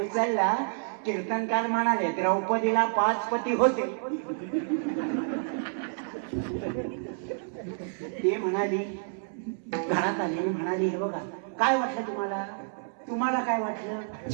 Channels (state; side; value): silent; left; 59 dB below the other